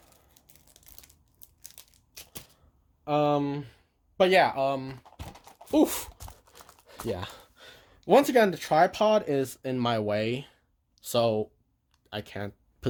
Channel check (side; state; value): both; identical; correlation 1.00